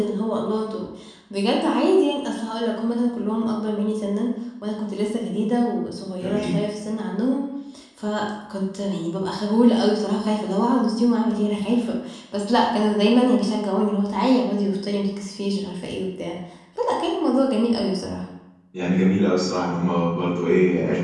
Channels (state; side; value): identical; both; correlation 1.00